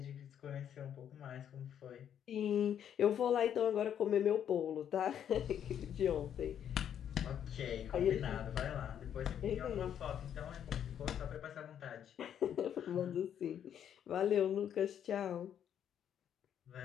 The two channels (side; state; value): right; quieter; 9.3 dB